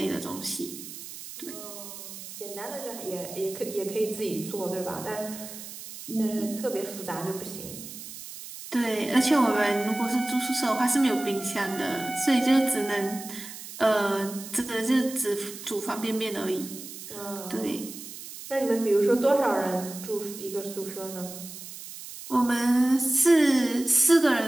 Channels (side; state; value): right; noise; hiss, 12 dB below the sound